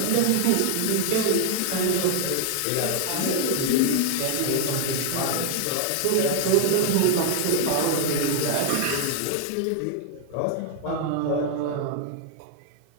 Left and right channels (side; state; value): both; different; correlation 0.00